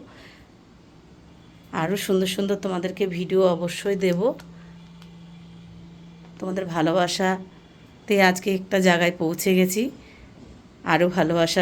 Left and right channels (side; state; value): both; identical; correlation 1.00